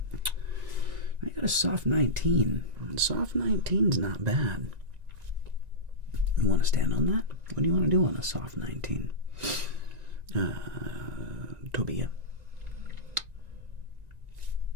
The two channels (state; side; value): late; left; 1.9 ms